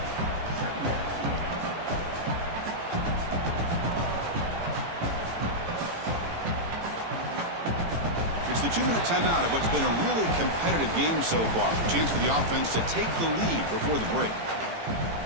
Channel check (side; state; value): left; late; 18 ms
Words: It's the 2-minute timeout of what's been a really competitive game so far. Chance for the offense to take the lead before the break.